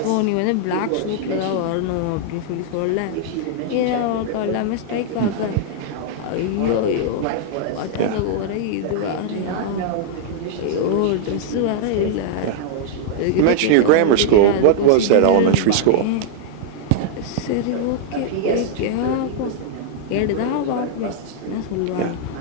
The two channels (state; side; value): different; both; correlation -0.01